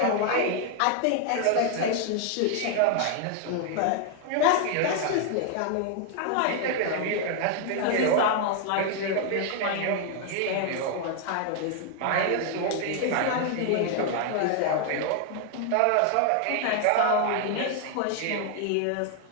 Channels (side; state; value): both; different; correlation 0.00